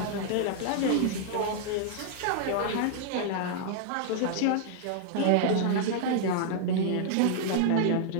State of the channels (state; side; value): different; both; correlation -0.01